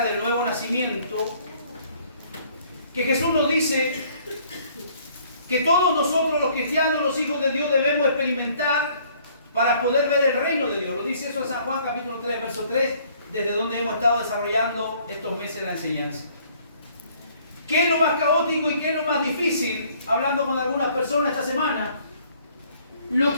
del nuevo nacimiento, que Jesús nos dice que todos nosotros los cristianos, los hijos de Dios, debemos experimentar para poder ver el reino de Dios. Lo dice eso en San Juan capítulo 3, verso 3, desde donde hemos estado desarrollando estos meses la enseñanza. ¿Qué es lo más caótico y qué es lo más difícil? Hablando con algunas personas esta semana, lo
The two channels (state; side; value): inverted; both; correlation -0.60